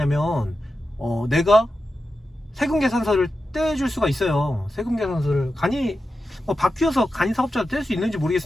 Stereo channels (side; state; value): both; normal; correlation 0.90